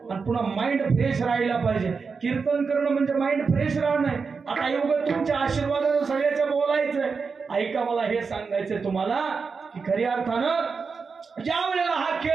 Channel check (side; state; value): left; quieter; 5.1 dB